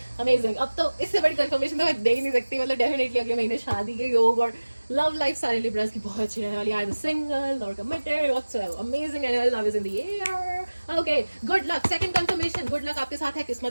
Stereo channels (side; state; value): both; inverted; correlation -1.00